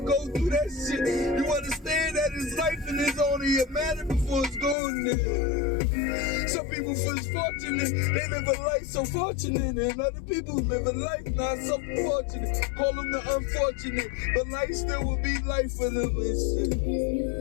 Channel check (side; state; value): right; drops out; at 4.8 s